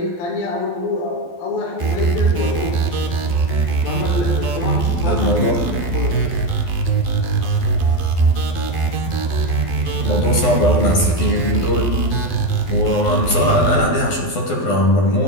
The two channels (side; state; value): right; late; 12 ms